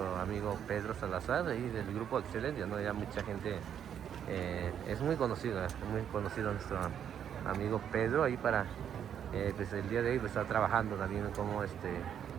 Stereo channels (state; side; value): quieter; left; 9.0 dB